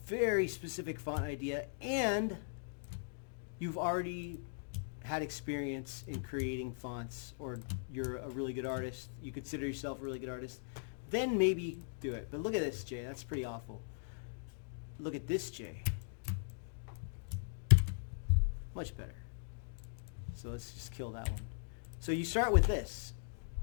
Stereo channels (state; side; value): silent; right; digital silence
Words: specific font idea and you've already had experience in creating fonts, or you're a really good artist, you consider yourself a really good artist, then maybe do it. But look at this J, that's pretty awful. Look at this J. Much better. So let's just kill that one. So you start with this,